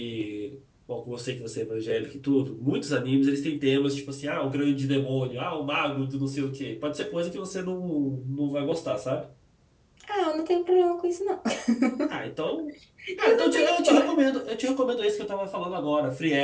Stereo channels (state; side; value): identical; both; correlation 1.00